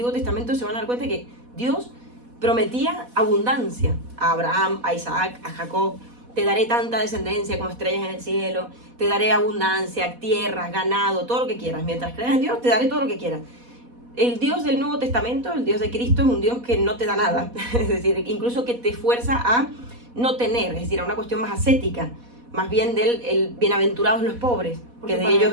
Testamento, se van a dar cuenta que Dios prometía abundancia a Abraham, a Isaac, a Jacob. Te daré tanta descendencia como estrellas en el cielo, te daré abundancia, tierras, ganado, todo lo que quieras. Mientras creas en Dios, te daré todo lo que quieras. El Dios del Nuevo Testamento, el Dios de Cristo, es un Dios que no te da nada, es decir, incluso que te fuerza a no tener, es decir, a una cuestión más ascética, más bien del bienaventurados los pobres, porque de ellos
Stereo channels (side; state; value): left; late; 4.1 ms